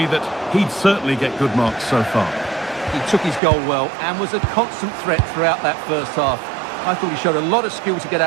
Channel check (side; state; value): left; drops out; at 3.4 s